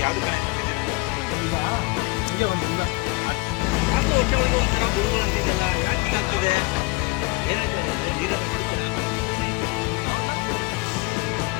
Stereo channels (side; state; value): right; quieter; 25.2 dB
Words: ಯಾಕೆ ಹೊಟ್ಟೆ ಒಳಗೆ ಒಂಥರ ಗುಡುಗುಳು ಅಂತಿದೆಯಲ್ಲ, ಯಾಕೆ ಹೀಗಾಗ್ತಿದೆ? ಏನಾಯ್ತು? ನೀರನ್ನು ಕುಡಿತೀರಾ?